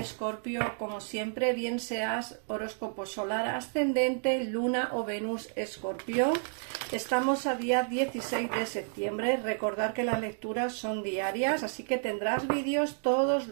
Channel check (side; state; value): left; silent; 57 dB below the other